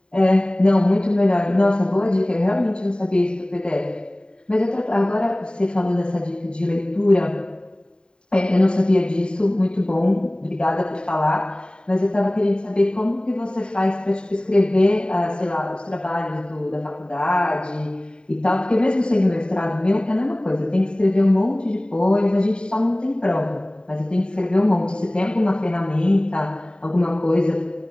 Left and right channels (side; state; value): right; late; 0.050 ms